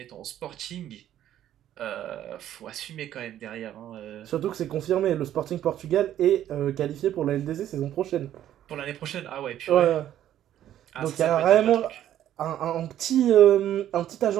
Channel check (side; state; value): left; quieter; 11.6 dB